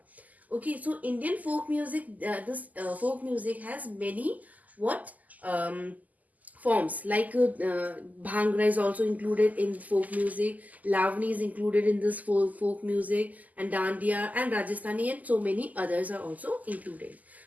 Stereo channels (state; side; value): late; left; 0.079 ms